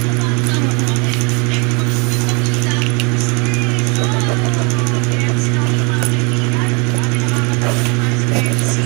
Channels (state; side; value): quieter; left; 32.4 dB